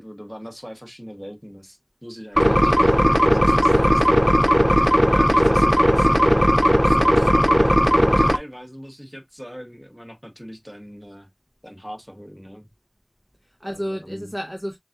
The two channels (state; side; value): identical; both; correlation 1.00